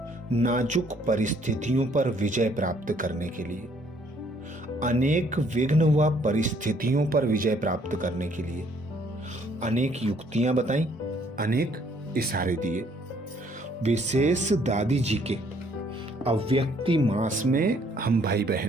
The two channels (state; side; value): normal; both; correlation 0.64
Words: नाजुक परिस्थितियों पर विजय प्राप्त करने के लिए, अनेक विघ्न व परिस्थितियों पर विजय प्राप्त करने के लिए अनेक युक्तियां बताई, अनेक इशारे दिए। विशेष दादी जी के अव्यक्ति मास में हम भाई